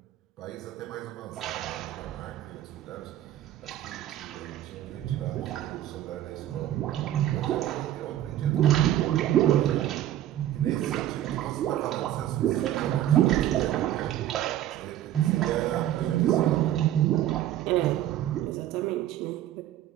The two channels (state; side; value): quieter; left; 12.6 dB